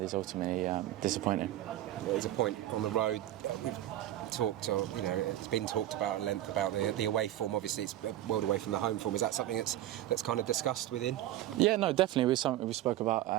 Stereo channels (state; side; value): quieter; left; 13.7 dB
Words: is ultimately disappointing. There's a point on the road. We've talked, it's been talked about at length about the away form. Obviously, it's a world away from the home form. Is that something that's kind of discussed within? Yeah, no, definitely. It was something we spoke about